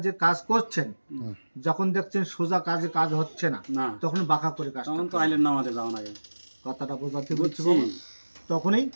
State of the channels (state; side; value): inverted; both; correlation -1.00